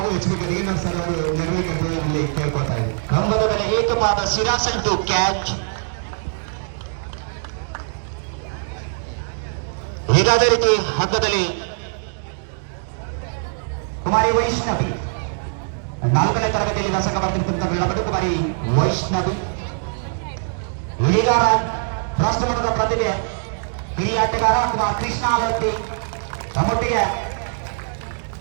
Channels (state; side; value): silent; left; digital silence